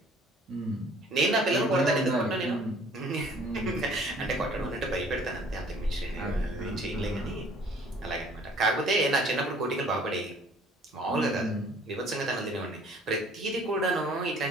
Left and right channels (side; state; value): both; normal; correlation 0.55